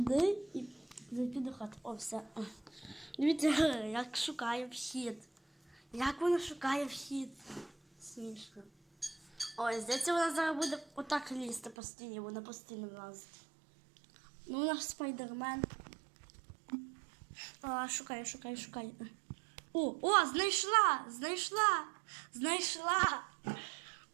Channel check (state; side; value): drops out; left; at 11.8 s